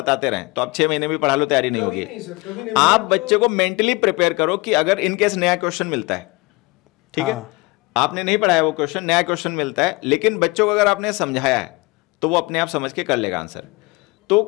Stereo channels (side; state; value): right; quieter; 24.8 dB